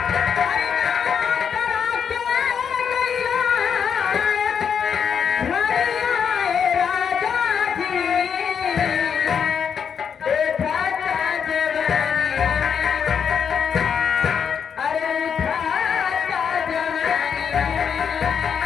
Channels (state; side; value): quieter; right; 7.2 dB